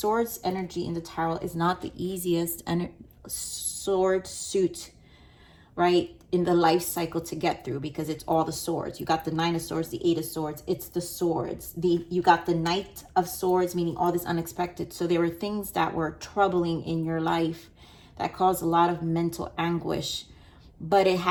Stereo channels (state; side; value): identical; both; correlation 1.00